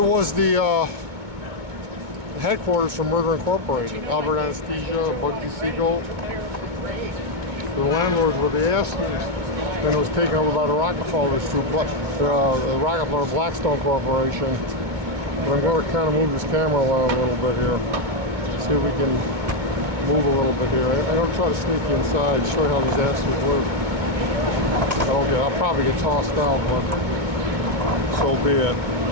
was the headquarters for Murder Incorporated. Albert Anesthesia, Bugsy Siegel. The landlords were the Astors. Then it was taken over by the Rockefellers through the Rockefeller Blackstone Corporation. But I'm going to kind of move this camera around a little bit here. See if we can move a little bit here. I'm going to try to sneak you inside, show you how these Astors live. I'll probably get tossed out, but so be it.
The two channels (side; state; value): left; late; 2.2 ms